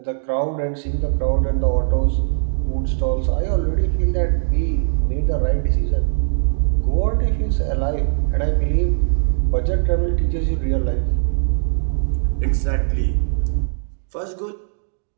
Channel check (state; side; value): silent; left; digital silence